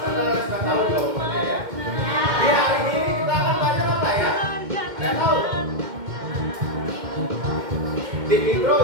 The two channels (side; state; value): left; late; 2.1 ms